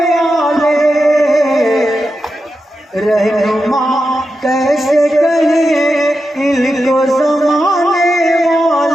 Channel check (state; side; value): normal; both; correlation 0.89